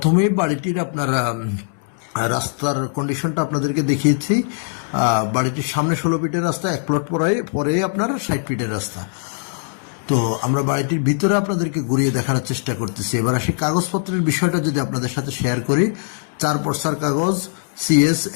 বাড়িটির আপনার রাস্তার কন্ডিশনটা আপনাদেরকে দেখিয়েছি। বাড়িটির সামনে 16 ফিটের রাস্তা, 1 প্লট পরে আপনার 60 ফিটের রাস্তা। তো আমরা বাড়িটির ভিতরে আপনাদেরকে ঘুরিয়ে দেখানোর চেষ্টা করতেছি। এবার আসি কাগজপত্রের বিষয়টা যদি আপনাদের সাথে শেয়ার করি। 4 পর্সার কাগজ, CS,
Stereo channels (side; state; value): right; silent; 65 dB below the other